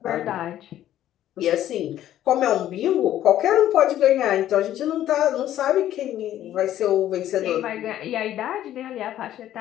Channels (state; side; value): quieter; right; 12.3 dB